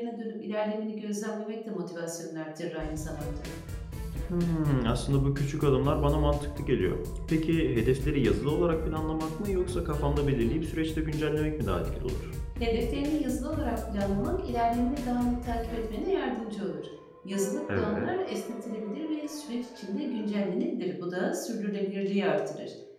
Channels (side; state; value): both; identical; correlation 1.00